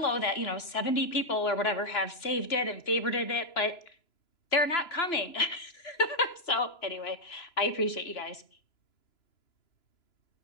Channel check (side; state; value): right; late; 2.9 ms